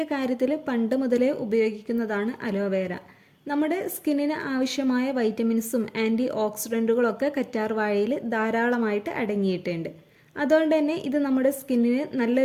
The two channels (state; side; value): identical; both; correlation 1.00